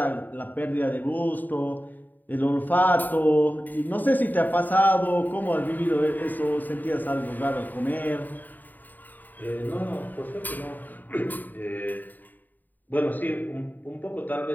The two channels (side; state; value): right; late; 0.087 ms